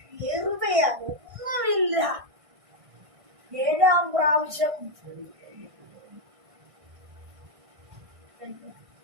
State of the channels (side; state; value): left; late; 1.6 ms